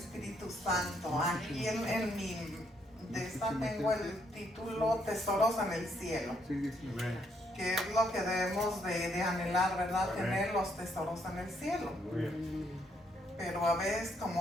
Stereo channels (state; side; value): normal; both; correlation 0.72